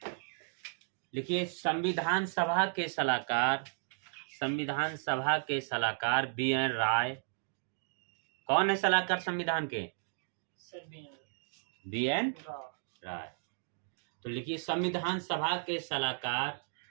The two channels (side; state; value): left; silent; digital silence